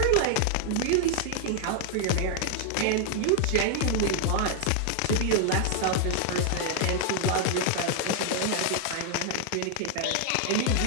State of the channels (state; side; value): different; both; correlation 0.00